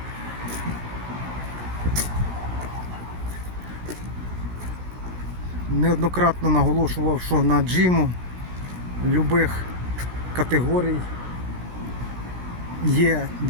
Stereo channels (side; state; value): left; late; 16 ms